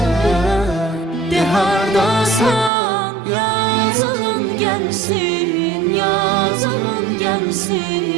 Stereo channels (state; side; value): drops out; left; at 2.7 s